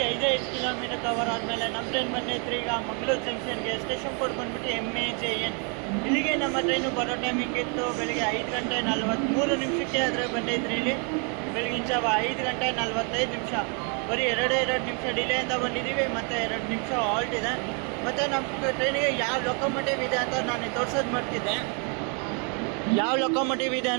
5 ಕಿಲೋಮೀಟರ್ ಕವರ್ ಆದಮೇಲೆ ನಮ್ಮ ಟ್ರೈನ್ ಬಂದೈತ್ರಿ ಈಗ ಮಂಗಳೂರು ಜಂಕ್ಷನ್ಗೆ. ಸ್ಟೇಷನ್ ಕೋಡ್ ಬಂದ್ಬಿಟ್ಟು MAJN. ಇಲ್ಲಿಗೆ ನಮ್ಮ ಟ್ರೈನು ಬರೋ ಟೈಮಿಂಗ್ ಇತ್ತು ಬೆಳಿಗ್ಗೆ 5 ಗಂಟೆ 43 ನಿಮಿಷಕ್ಕೆ. ಆದರೆ ಬಂದೈತ್ರಿ ಇಲ್ಲಿ ಬೆಳಗಿನ ಜಾವ 5 ಗಂಟೆ 45 ನಿಮಿಷ. ಬರೀ 2 ನಿಮಿಷ ಡಿಲೇಯಿಂದ ಬಂದಿದ್ದೀವಿ ಮತ್ತು 2 ನಿಮಿಷ ಹಾಲ್ಟ್ ಇದೆ. ಮತ್ತು ನಮ್ಮ ಟ್ರೈನಿಗೆ ಯಾವ ಲೊಕೊಮೋಟಿವ್ ಇದೆ ಅಂತ ನಾನು ತೋರ್ಸೋದು ಮಾಡ್ತಿದ್ದೆ. ಯಾವ ಲೊಕೊಮೋಟಿವ್ ಇದೆ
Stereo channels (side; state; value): left; quieter; 36.9 dB